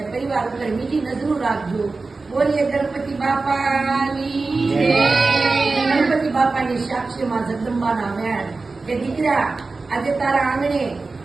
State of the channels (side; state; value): left; quieter; 3.8 dB